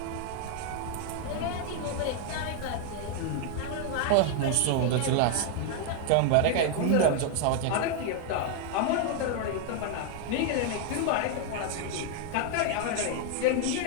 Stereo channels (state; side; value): different; both; correlation 0.00